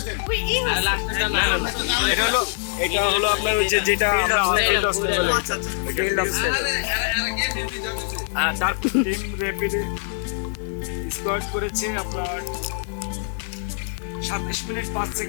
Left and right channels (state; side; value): silent; right; 63 dB below the other